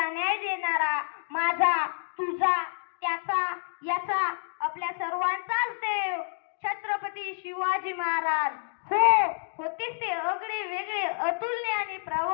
न्याय देणारा, माझा, तुझा, त्याचा, याचा, आपल्या सर्वांचाच देव छत्रपती शिवाजी महाराज. होतेच ते अगळे वेगळे, अतुलनीय आणि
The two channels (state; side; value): silent; right; digital silence